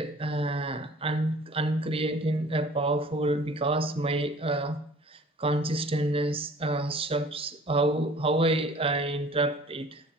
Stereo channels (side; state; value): both; normal; correlation 0.49